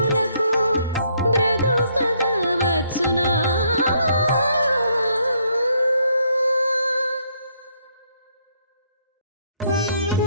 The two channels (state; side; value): inverted; both; correlation -0.70